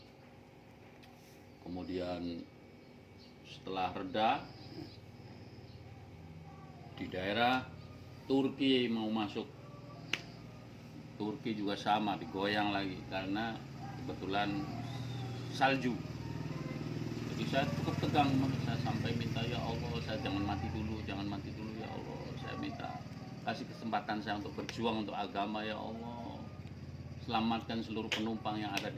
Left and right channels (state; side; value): identical; both; correlation 1.00